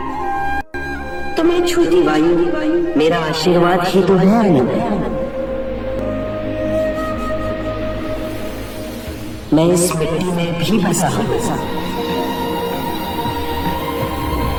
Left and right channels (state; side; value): identical; both; correlation 1.00